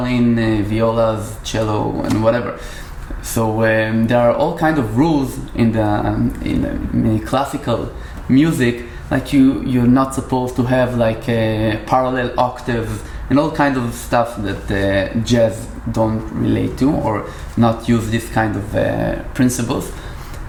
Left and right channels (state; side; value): identical; both; correlation 1.00